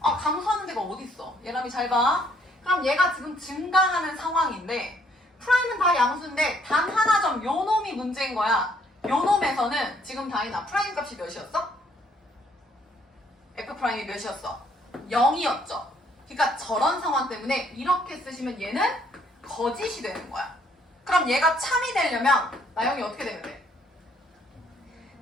데가 어디 있어? 얘람이 잘 봐. 그럼 얘가 지금 증가하는 상황인데 프라임은 다 양수인데 단 하나 점 요 놈이 문제인 거야. 요 놈에서는 지금 다이나 프라임 값이 몇이었어? F 프라임이 몇이었어? 0이었죠. 그러니까 저런 상황 때문에 이렇게 쓰시면 얘는 거짓이 되는 거야. 그럼 얘가 참이 되려면 나영이 어떻게 되면 돼?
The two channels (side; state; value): both; normal; correlation 0.66